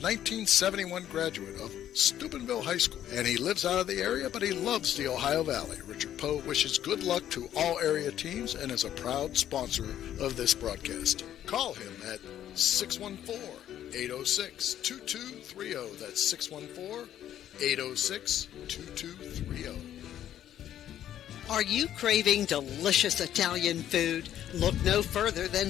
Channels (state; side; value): quieter; right; 11.2 dB